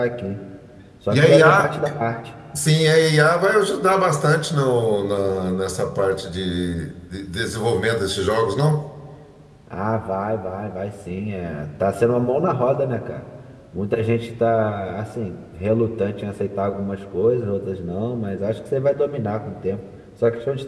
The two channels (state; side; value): identical; both; correlation 1.00